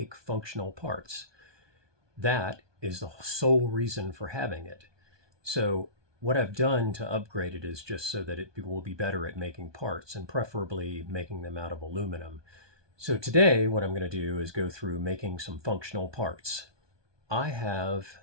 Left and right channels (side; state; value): left; late; 1.2 ms